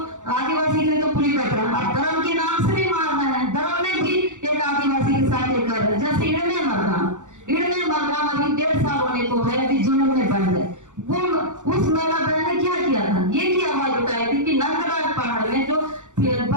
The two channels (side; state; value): left; late; 0.85 ms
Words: आदिवासी के लिए तो पूरी कर रहा है। धर्म के नाम से भी मारना है, धर्म में भी एक आदिवासी के साथ ये कर रहे हैं। जैसे इड़ने मरगाम अभी 1.5 साल होने को है, अभी जुलूम में बंद है। वो उस महिला बहन ने क्या किया था, ये की आवाज उठाई थी कि नंदराज पहाड़ में जो